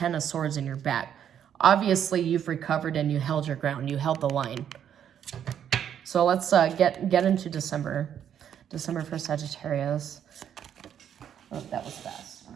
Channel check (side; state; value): left; quieter; 9.2 dB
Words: of Swords in your back. Obviously, you've recovered and you held your ground. You held the line. So let's get into December. December for Sagittarius. Oh, that was fast.